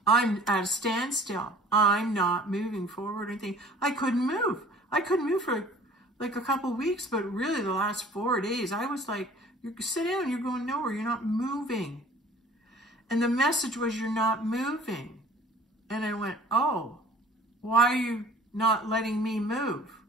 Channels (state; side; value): normal; both; correlation 0.50